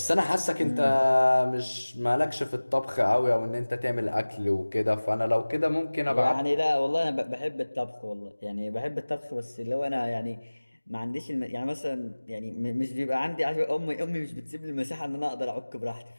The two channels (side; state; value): both; inverted; correlation -1.00